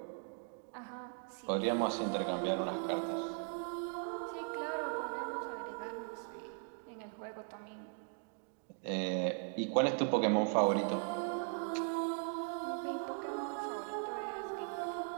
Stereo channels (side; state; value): left; silent; 52 dB below the other